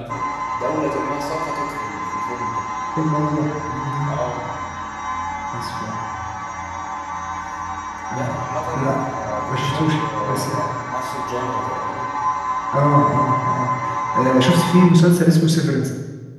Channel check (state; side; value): identical; both; correlation 1.00